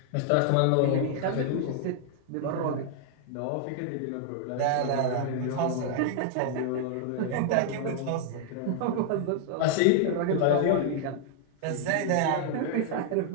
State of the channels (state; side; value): different; both; correlation 0.00